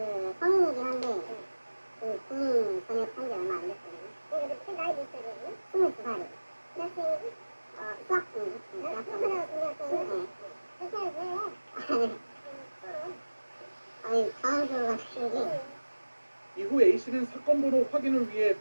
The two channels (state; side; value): inverted; both; correlation -1.00